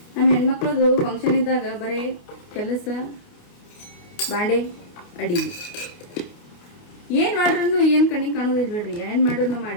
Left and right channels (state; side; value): late; right; 28 ms